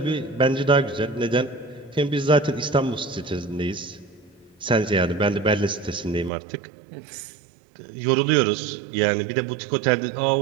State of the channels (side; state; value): left; drops out; at 6.3 s